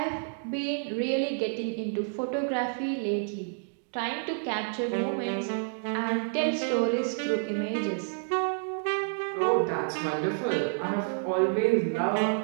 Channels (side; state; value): left; silent; digital silence